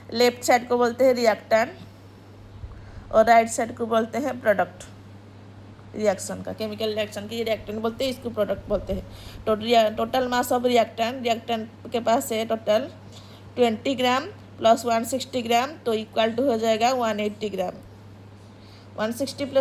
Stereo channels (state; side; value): identical; both; correlation 1.00